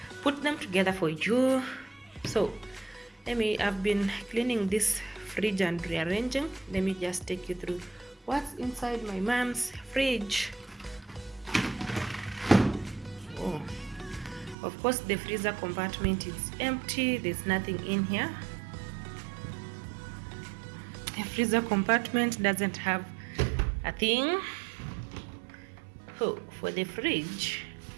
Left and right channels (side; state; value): left; drops out; at 14.6 s